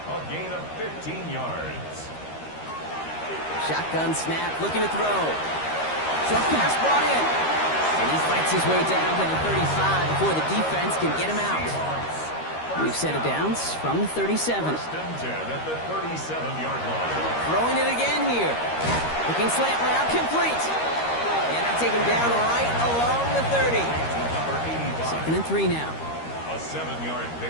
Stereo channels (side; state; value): right; late; 13 ms